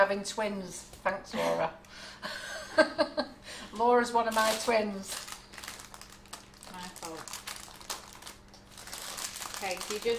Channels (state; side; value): identical; both; correlation 1.00